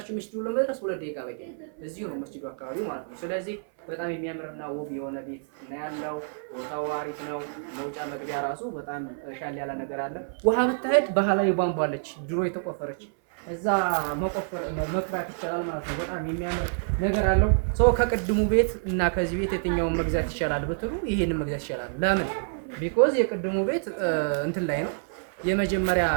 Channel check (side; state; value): left; silent; 58 dB below the other